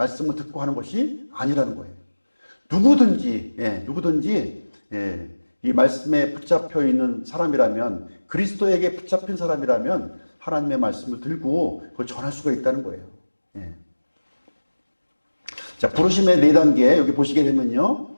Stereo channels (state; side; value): inverted; both; correlation -1.00